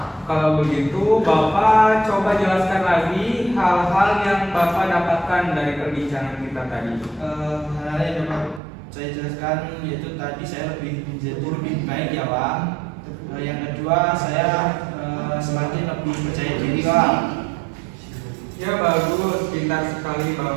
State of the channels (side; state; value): left; drops out; at 8.6 s